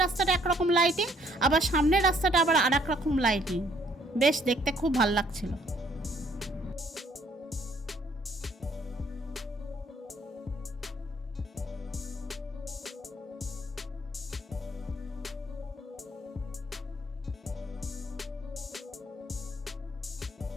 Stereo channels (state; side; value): normal; both; correlation 0.64